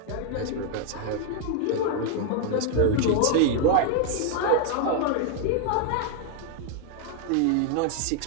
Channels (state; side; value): different; both; correlation 0.00